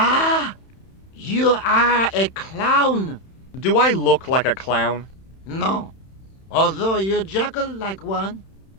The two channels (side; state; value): right; late; 31 ms